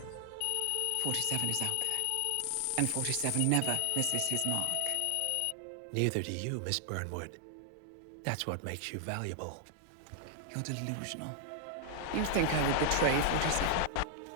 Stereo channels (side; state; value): both; different; correlation 0.00